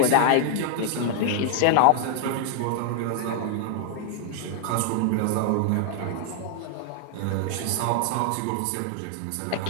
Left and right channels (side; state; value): both; different; correlation 0.00